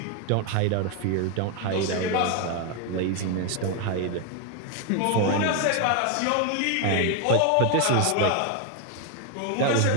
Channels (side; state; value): both; different; correlation 0.01